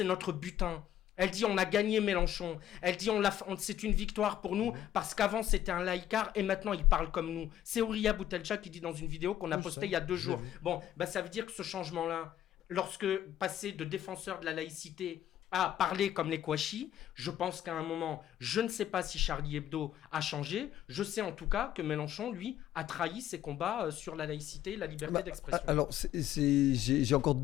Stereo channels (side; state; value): right; quieter; 11.8 dB